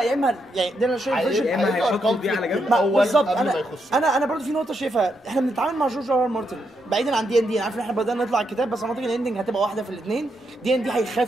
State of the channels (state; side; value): normal; both; correlation 0.80